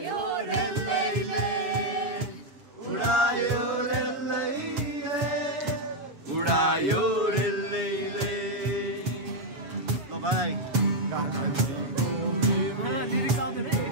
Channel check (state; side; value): late; left; 6.9 ms